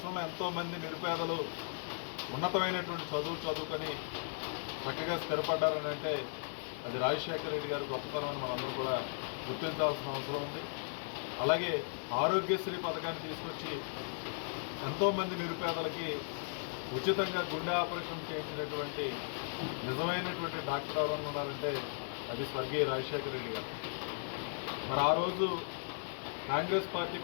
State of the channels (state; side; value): silent; right; digital silence